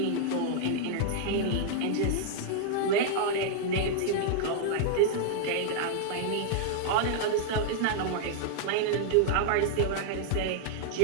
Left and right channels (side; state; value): both; different; correlation -0.01